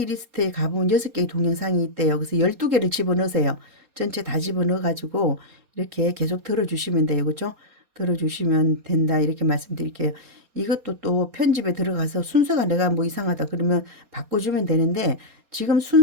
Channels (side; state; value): left; late; 4.2 ms